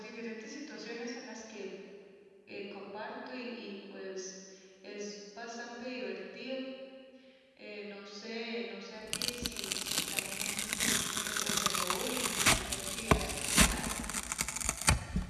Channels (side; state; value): both; identical; correlation 1.00